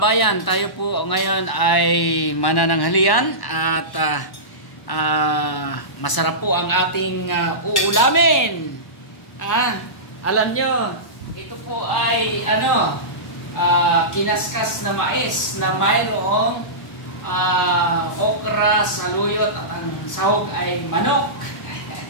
tayo po ngayon ay manananghalian at masarap po ang ating uulamin. Alam nyo, ito po ay kinaskas na mais na mayroong okra, saluyot at ang sahog ay manok.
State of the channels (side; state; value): right; late; 1.0 ms